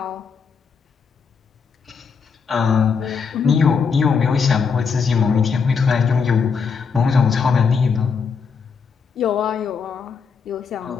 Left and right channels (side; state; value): right; quieter; 5.7 dB